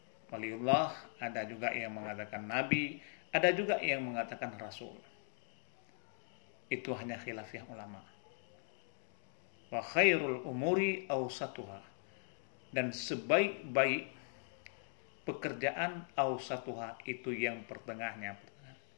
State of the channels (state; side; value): silent; right; digital silence